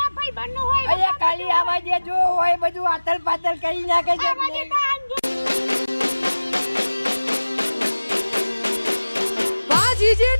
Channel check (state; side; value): inverted; both; correlation -1.00